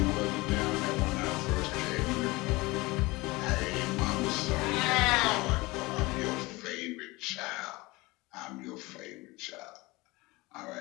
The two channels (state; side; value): quieter; right; 22.6 dB